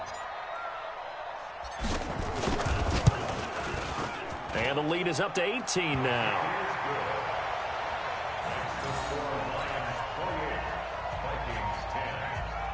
And the lead is up to 18 now.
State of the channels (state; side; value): identical; both; correlation 1.00